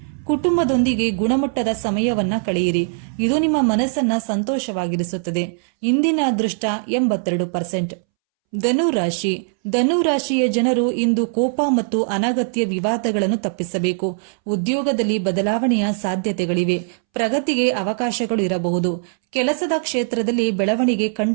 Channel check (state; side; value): silent; left; 65 dB below the other